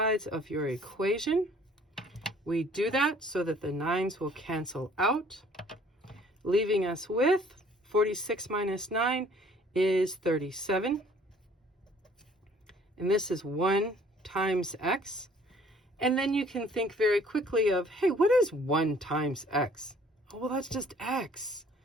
of your equation. We do that so that the 9s will cancel out, leaving us with 46 minus 9 is 37. And this is 1 times x. And then you can think very quickly of, hey, what is 1 times x? Oh, well, that's just x.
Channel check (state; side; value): normal; both; correlation 0.56